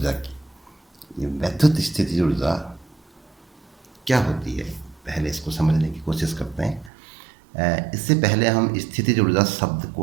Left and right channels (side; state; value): left; drops out; at 6.9 s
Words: की। ये वैद्युत स्थितिज ऊर्जा क्या होती है, पहले इसको समझने की कोशिश करते हैं। इससे पहले हम स्थितिज ऊर्जा शब्द को